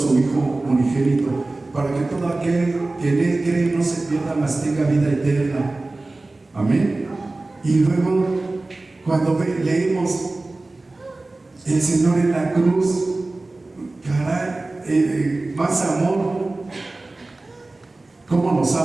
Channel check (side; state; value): left; quieter; 3.1 dB